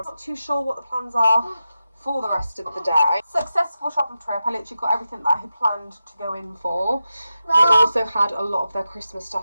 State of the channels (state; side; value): inverted; both; correlation -0.91